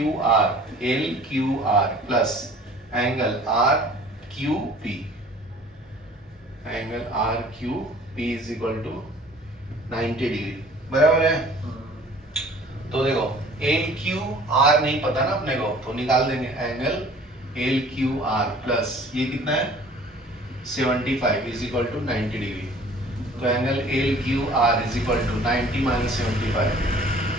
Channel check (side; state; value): both; normal; correlation 0.50